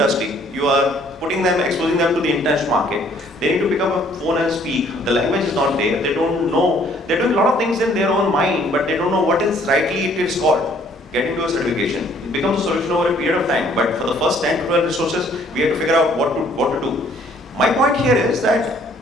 you are putting them, exposing them to the international market. They need to pick up a phone and speak. The language is not there. They don't know. They're doing a lot of things in their own mind, but they don't know what is rightly it is called. Getting to a certification. It becomes a solution over a period of time. But for the first 10 to 12 resources, we have to figure out what to do. My point here is that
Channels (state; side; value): normal; both; correlation 0.61